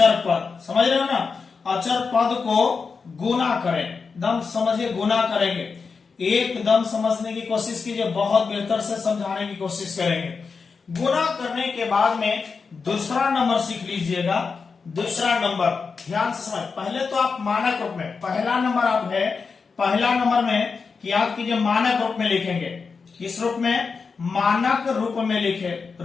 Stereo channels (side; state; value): right; quieter; 5.1 dB